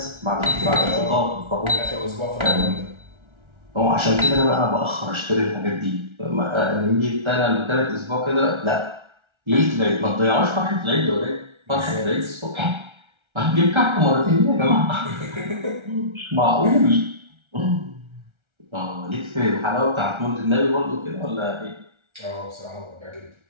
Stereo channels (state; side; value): late; left; 1.3 ms